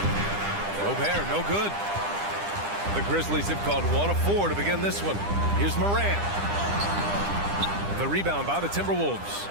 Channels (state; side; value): late; left; 10 ms